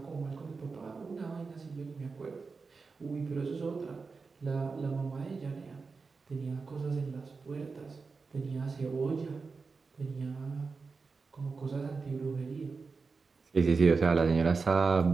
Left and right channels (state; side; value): quieter; left; 4.5 dB